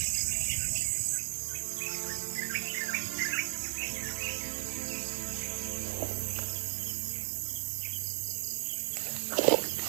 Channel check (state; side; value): silent; left; 55 dB below the other